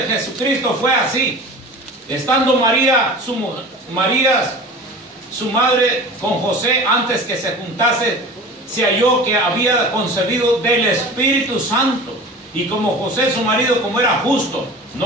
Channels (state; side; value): normal; both; correlation 0.37